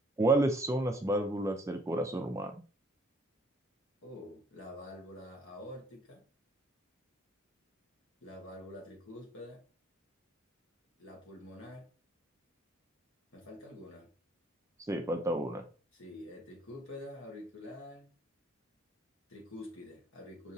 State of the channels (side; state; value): both; normal; correlation 0.61